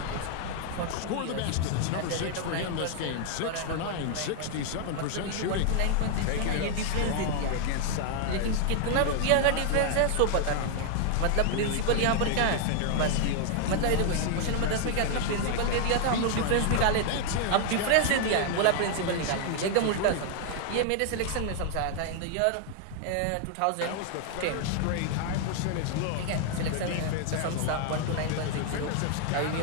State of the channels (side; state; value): both; different; correlation 0.00